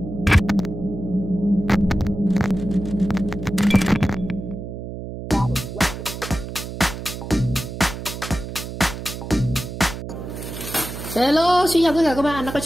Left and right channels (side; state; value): right; noise; hum, 8 dB below the sound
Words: xin chào tất cả các bạn đã quay